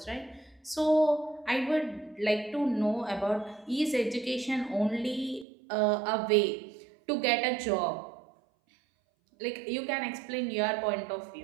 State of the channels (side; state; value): left; drops out; at 5.5 s